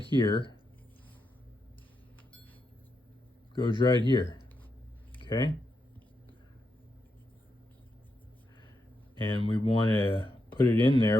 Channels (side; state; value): both; normal; correlation 0.84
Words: goes right here, okay? And we want to put it in